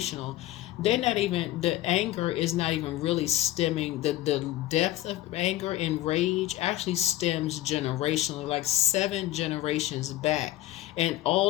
They're not even, the anger is not even really stemming, the depth of anger and rage actually stems generationally, like 7 generations back. And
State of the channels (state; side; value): quieter; right; 15.0 dB